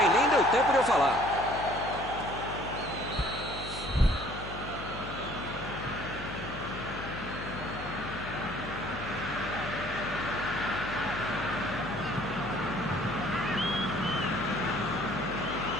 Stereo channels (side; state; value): left; noise; hum, 10 dB below the sound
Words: Nem deu tempo de eu falar.